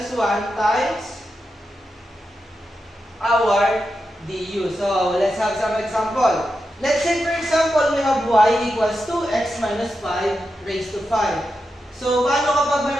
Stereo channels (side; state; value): both; normal; correlation 0.88